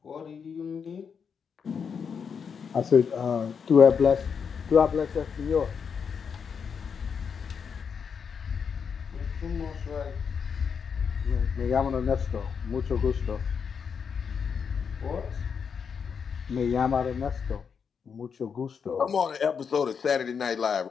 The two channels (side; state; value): right; quieter; 6.5 dB